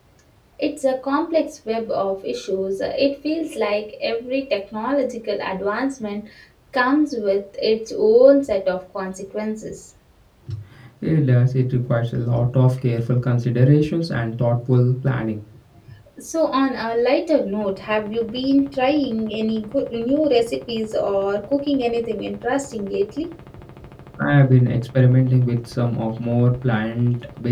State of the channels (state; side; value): identical; both; correlation 1.00